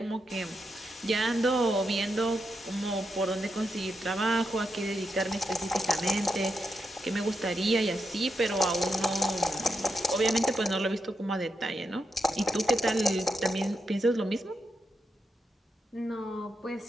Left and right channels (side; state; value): both; normal; correlation 0.84